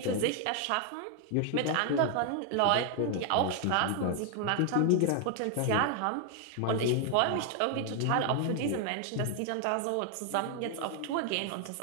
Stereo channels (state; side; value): different; both; correlation 0.00